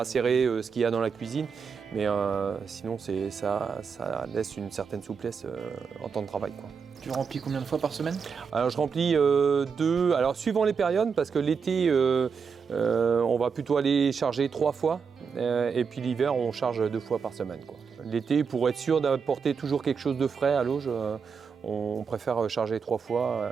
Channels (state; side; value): quieter; left; 6.0 dB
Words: ce qu'il y a dans la cuisine. Mais sinon, ça laisse une certaine souplesse en temps de travail, quoi. Tu remplis combien de fois par semaine? Alors je remplis 2, alors suivant les périodes, parce que l'été on va plutôt aller charger 3 fois et puis l'hiver on charge 2 fois par semaine, quoi. L'été, pour être sûr d'apporter toujours quelque chose de frais à l'auge, on préfère charger 3 fois,